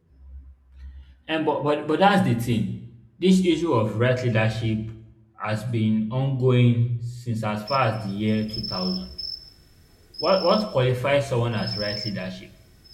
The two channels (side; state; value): both; identical; correlation 1.00